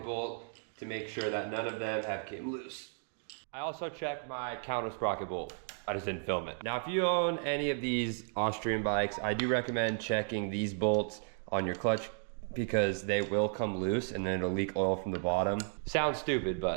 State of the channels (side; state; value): left; silent; 55 dB below the other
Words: bolt to make sure that none of them have came loose. I also check my counter sprocket bolt. I just didn't film it. Now if you own any of these Austrian bikes, I do recommend checking these bolts on your clutch because they will come loose and then it'll leak oil from the bottom. Sounds stupid,